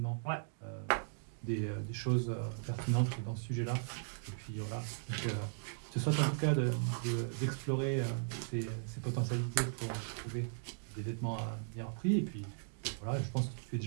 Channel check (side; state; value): left; silent; digital silence